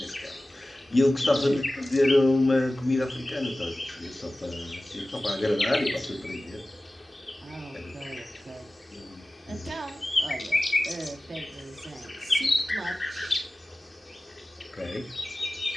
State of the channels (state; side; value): normal; both; correlation 0.97